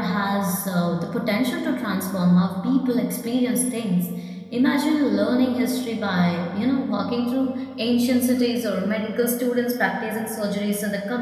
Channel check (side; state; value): both; identical; correlation 1.00